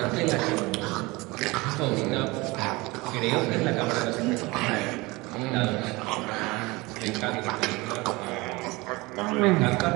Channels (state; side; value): quieter; left; 23.1 dB